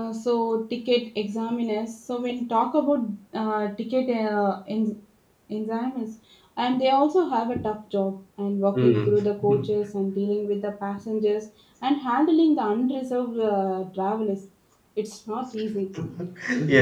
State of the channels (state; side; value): identical; both; correlation 1.00